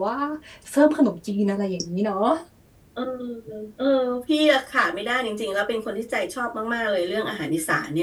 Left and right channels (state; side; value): identical; both; correlation 1.00